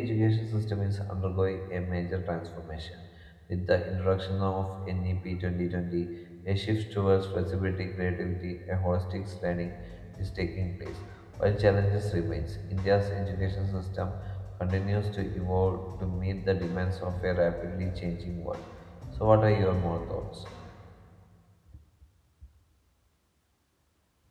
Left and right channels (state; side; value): identical; both; correlation 1.00